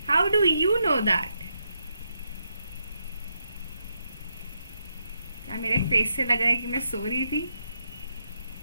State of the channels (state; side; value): inverted; both; correlation -0.81